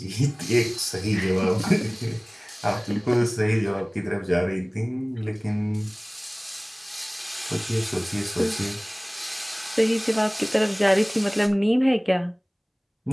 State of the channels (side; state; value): both; identical; correlation 1.00